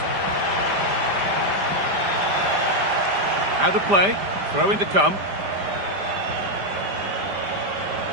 Out of play. Throw in to come.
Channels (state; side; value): late; left; 5.0 ms